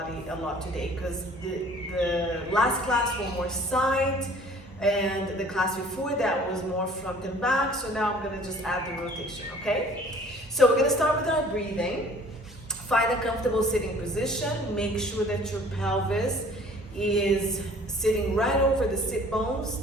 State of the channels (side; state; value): both; normal; correlation 0.51